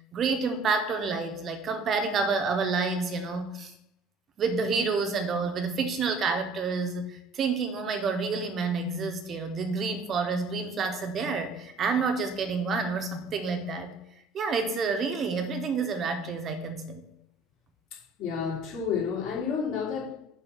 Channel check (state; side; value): quieter; left; 3.2 dB